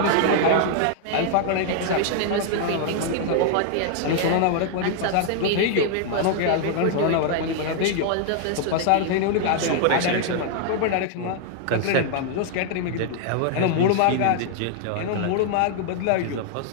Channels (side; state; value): both; different; correlation 0.00